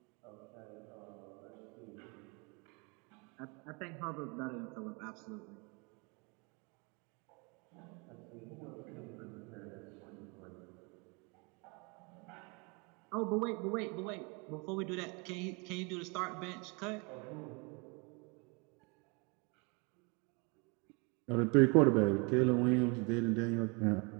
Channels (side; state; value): left; quieter; 30.8 dB